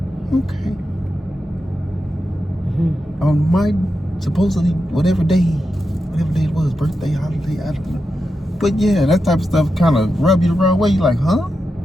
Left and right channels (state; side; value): normal; both; correlation 0.88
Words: Okay. On my supposedly whatever day it was, birthday, holiday, I don't know. But yeah, that type of stuff kind of rub you the wrong way. You're like, huh?